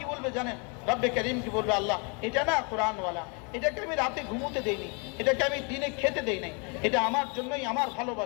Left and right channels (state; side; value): quieter; right; 34.7 dB